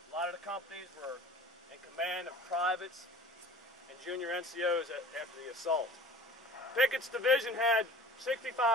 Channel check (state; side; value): normal; both; correlation 0.44